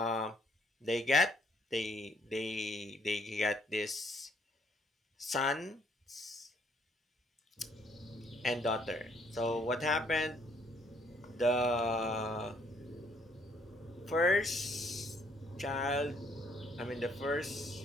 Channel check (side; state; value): both; normal; correlation 0.67